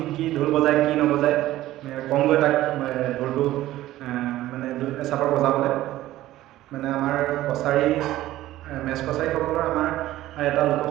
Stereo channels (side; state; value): left; quieter; 15.2 dB